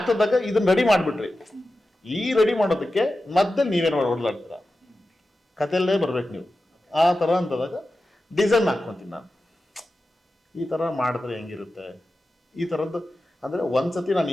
ಇದನ್ನ ರೆಡಿ ಮಾಡಿಬಿಟ್ರಿ, ಈ ರೆಡಿ ಮಾಡೋದಕ್ಕೆ ಮತ್ತೆ ನೀವೇನು ಹೊಡ್ಲಾಡ್ತೀರ, ಕಥೆಯಲ್ಲೇ ಬರ್ಬೇಕು ನೀವು. ಆ ಥರ ಅಂತದಾಗ ಡಿಸೈನ್ ಹಾಕ್ಕೊತೀನಿ ನಾನು. ಈ ಥರ ಮಾಡಿದ್ರೆ ಹೆಂಗಿರುತ್ತೆ, ಈ ಥರದ್ದು. ಅಂದರೆ ಒಂದ್ಸತಿ ನಾನು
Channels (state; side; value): normal; both; correlation 0.93